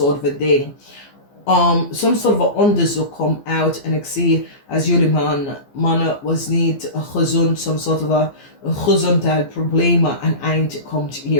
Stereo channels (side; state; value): right; late; 15 ms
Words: van ding. Some sort of onderzoek komt uit en ik zie als jullie mannen was niet gezond, some sort of gezondheidsproblemen een eind komt